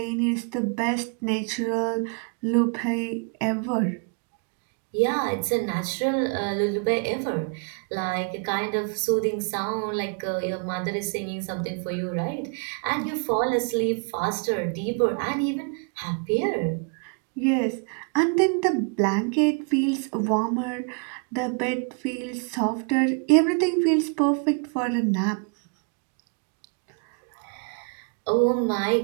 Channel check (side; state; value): left; quieter; 39.3 dB